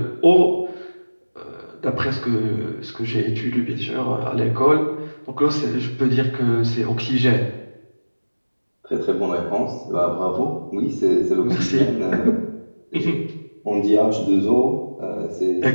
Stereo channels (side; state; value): both; inverted; correlation -1.00